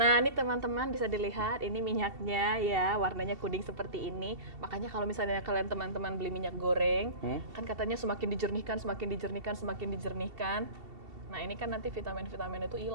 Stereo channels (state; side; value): late; left; 2.7 ms